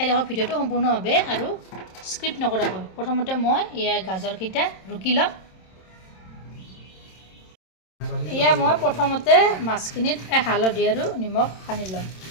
থাকক ভিডিঅ'টো সম্পূৰ্ণভাৱে আৰু স্ক্ৰিপ্ট নকৰাকৈ। প্ৰথমতে মই এয়া গাজৰকেইটা ৰুকি ল'ম। এয়া মই প্ৰথমতে মাছখিনিত হালধি আৰু নিমখ সানি ল'ম।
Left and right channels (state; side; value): late; right; 27 ms